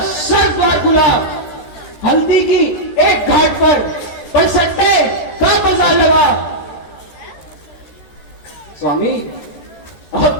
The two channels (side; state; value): right; late; 13 ms